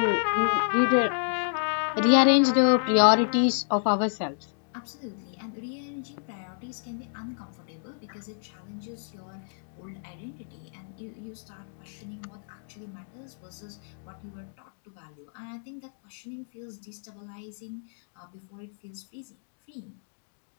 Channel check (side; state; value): right; silent; digital silence